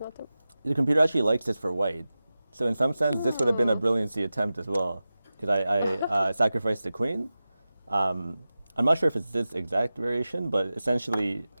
a. the computer actually likes this for white. So in some sense, this would have been a brilliancy attempt as well, because I sacrificed the queen. I'm not sure if it's this exact variation, but essentially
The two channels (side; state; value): both; inverted; correlation -0.95